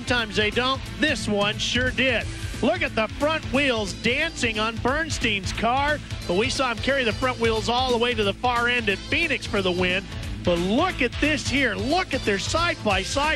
they don't. This one sure did. Look at the front wheels dancing on Bernstein's car, but we saw him carry the front wheels all the way to the far end at Phoenix for the win. But look at this here. Look at their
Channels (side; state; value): both; identical; correlation 1.00